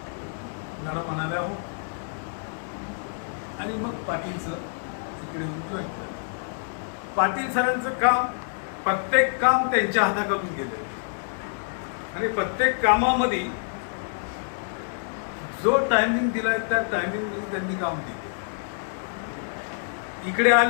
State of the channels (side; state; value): right; silent; digital silence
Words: मॅडम म्हणाल्या हो. आणि मग पाटील सर इकडे येऊन जॉईन केलं. पाटील सरांचं काम, प्रत्येक काम त्यांच्या हाताखालून गेलं आणि प्रत्येक कामामध्ये जो टायमिंग दिलाय त्या टायमिंगमध्ये त्यांनी काम केलं. इकडे